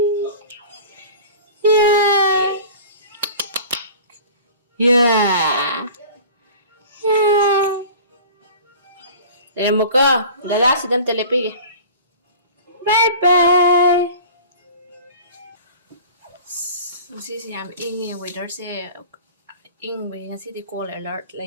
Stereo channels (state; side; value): inverted; both; correlation -0.41